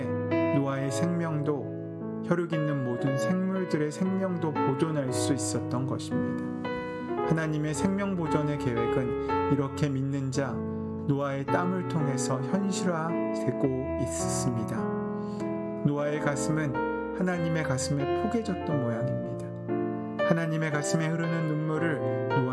노아의 생명도 혈육 있는 모든 생물들의 생명도 보존할 수 있었던 것입니다. 하나님의 생명 보존의 계획은 이렇게 믿는 자 노아의 땀을 통해서 현실화되고 있습니다. 노아의 가슴은 하나님의 가슴에 포개졌던 모양입니다. 하나님의 가슴에 흐르는 눈물을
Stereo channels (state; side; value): identical; both; correlation 1.00